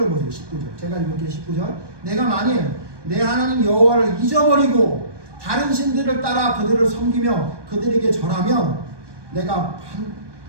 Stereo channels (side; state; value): left; late; 1.2 ms